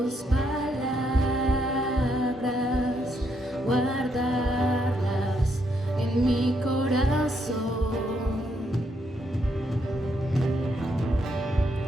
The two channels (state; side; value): normal; both; correlation 0.76